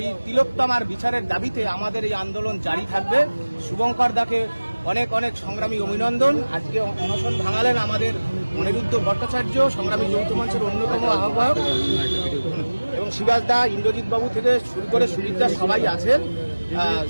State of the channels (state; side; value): inverted; both; correlation -1.00